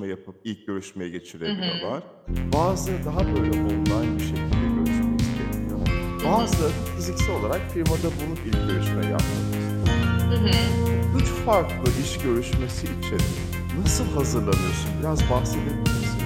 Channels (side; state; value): both; identical; correlation 1.00